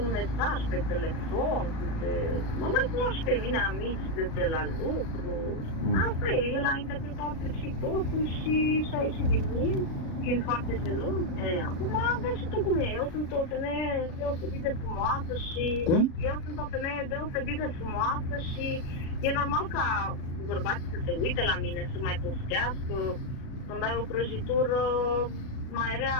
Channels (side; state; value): right; late; 36 ms